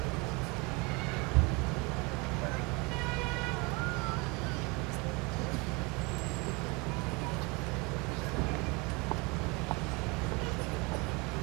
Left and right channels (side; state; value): left; quieter; 27.0 dB